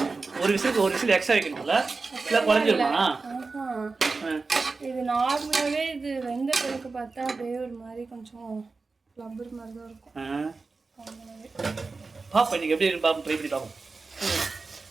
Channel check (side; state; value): left; quieter; 4.1 dB